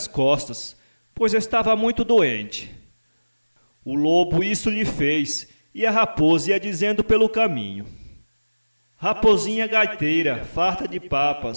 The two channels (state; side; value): inverted; both; correlation -1.00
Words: costas, pois estava muito doente. O lobo isso lhe fez, e a raposa ia dizendo pelo caminho: Raposinha gaiteira, farta de